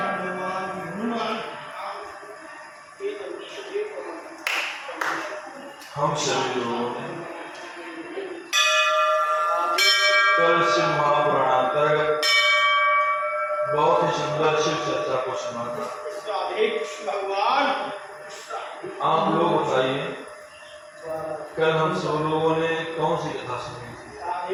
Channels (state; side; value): identical; both; correlation 1.00